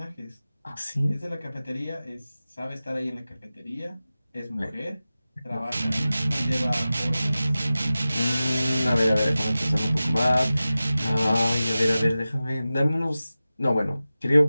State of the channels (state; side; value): inverted; both; correlation -0.95